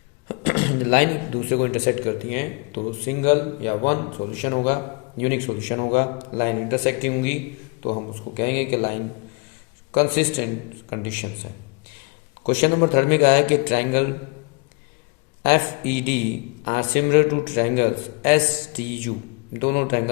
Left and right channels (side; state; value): right; quieter; 30.0 dB